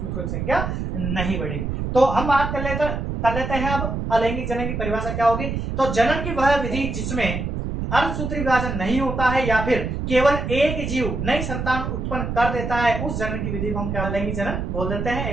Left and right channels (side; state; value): right; noise; rumble, 3 dB below the sound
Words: की संख्या नहीं बढ़ेगी। तो हम बात कर लेते हैं अब अलैंगिक जनन की परिभाषा क्या होगी। तो जनन की वह विधि जिसमें अर्धसूत्री विभाजन नहीं होता है या फिर केवल एक जीव नई संतान उत्पन्न कर देता है, उस जनन की विधि को हम क्या अलैंगिक जनन बोल देते हैं।